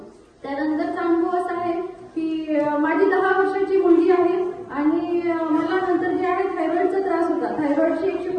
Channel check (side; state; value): both; identical; correlation 1.00